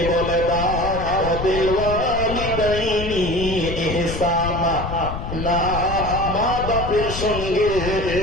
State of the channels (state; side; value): noise; left; rumble, 6 dB below the sound